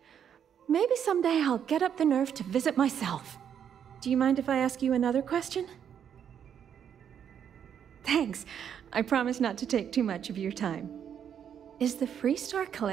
Maybe someday I'll get up the nerve to visit myself. Do you mind if I ask you another question? Thanks. I promise not to take too much of your time. Is the Freestar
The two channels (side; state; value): left; quieter; 8.6 dB